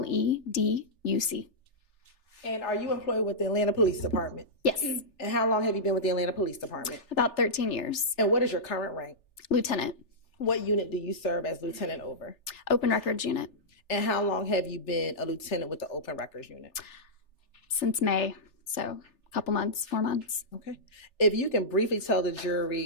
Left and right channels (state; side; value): late; right; 3.4 ms